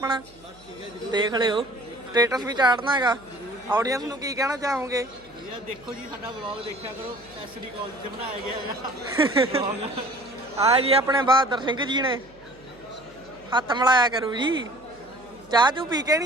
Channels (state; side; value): noise; right; hum, 27 dB below the sound